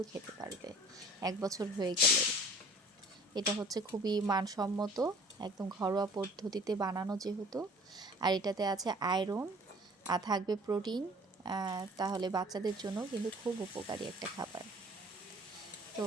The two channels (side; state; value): both; normal; correlation 0.49